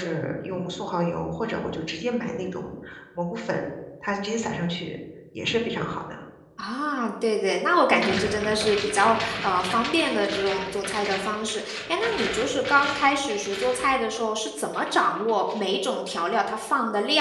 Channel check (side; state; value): both; identical; correlation 1.00